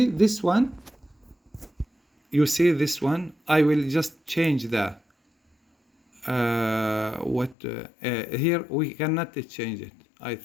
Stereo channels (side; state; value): right; drops out; at 7.6 s